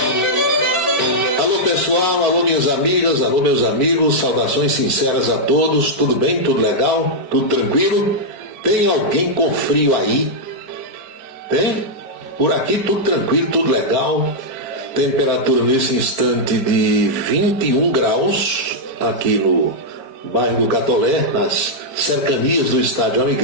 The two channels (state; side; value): late; right; 4.5 ms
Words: Alô pessoal, alô minhas amigas, alô meus amigos, saudações sinceras a todos, tudo bem, tudo legal, tudo tranquilo? Tem alguém com frio aí? Tem? Por aqui tudo tranquilo, tudo legal. Temperatura nesse instante de 21 graus, aqui no bairro do Catolé, nas cercanias do Estádio